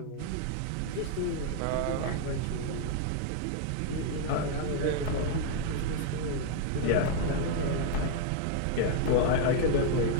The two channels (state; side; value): different; both; correlation 0.00